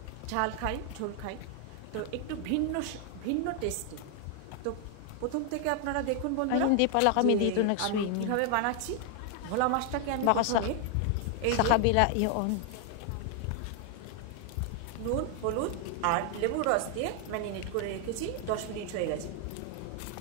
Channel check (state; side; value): different; both; correlation 0.00